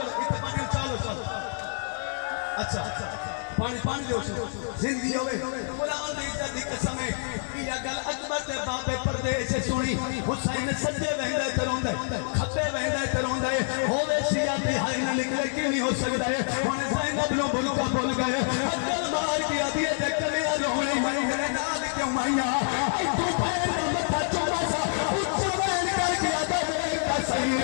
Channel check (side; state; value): right; silent; digital silence